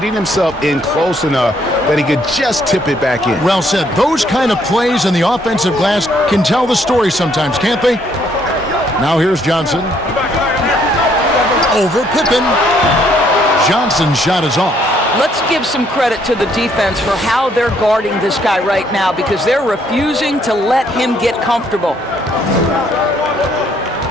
himself in close enough that he could just tip it back in. Well said. Those kind of plays in the offensive glass can tell the story sometimes, can't they? Now here's Johnson. Over Pippen. Johnson's shot is off. Let's give some credit to the defense for how they're guarding this guy right now because they're refusing to let him get comfortable.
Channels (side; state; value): both; normal; correlation 0.68